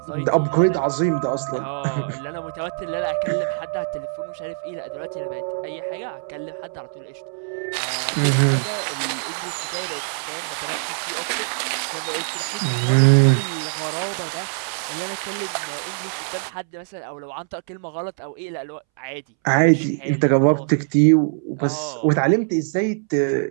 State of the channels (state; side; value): silent; left; 63 dB below the other